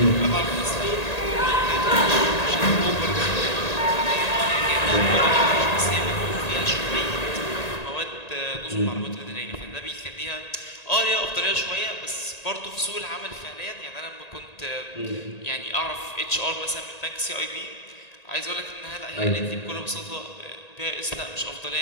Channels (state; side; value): late; right; 1.8 ms